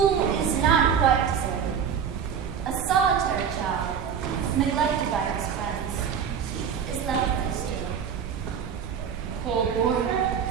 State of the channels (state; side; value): quieter; left; 7.5 dB